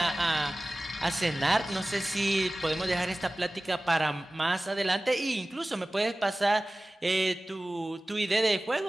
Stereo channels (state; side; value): normal; both; correlation 0.97